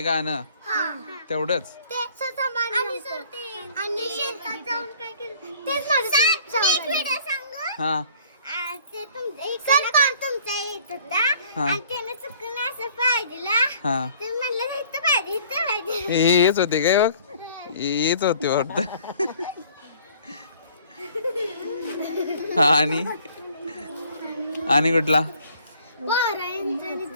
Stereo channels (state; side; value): inverted; both; correlation -0.55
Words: गाणं तेवढंच. हा हेच होते काय बघ. हेच होते वाटत. हा आणि कुठला.